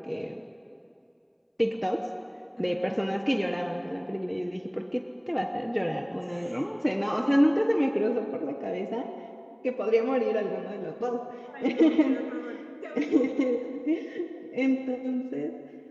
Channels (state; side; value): identical; both; correlation 1.00